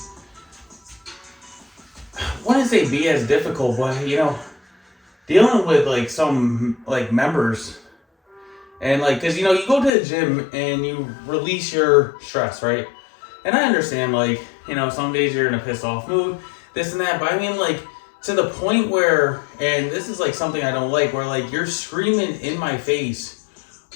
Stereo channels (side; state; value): right; drops out; at 9.9 s